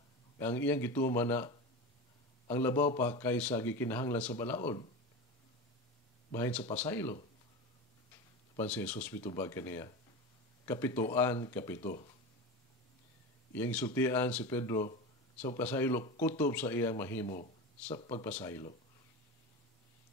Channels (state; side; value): normal; both; correlation 0.25